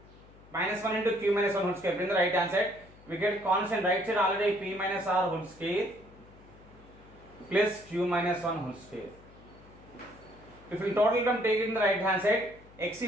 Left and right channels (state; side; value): noise; left; hum, 23 dB below the sound